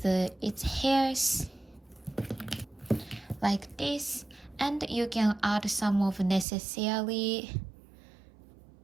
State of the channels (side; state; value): left; drops out; at 6.5 s